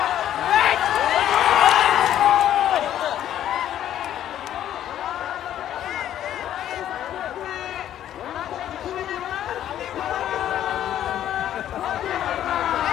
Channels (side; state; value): right; quieter; 11.3 dB